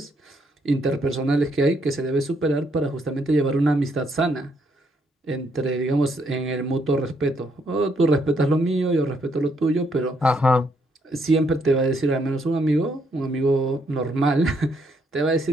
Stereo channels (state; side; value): normal; both; correlation 0.73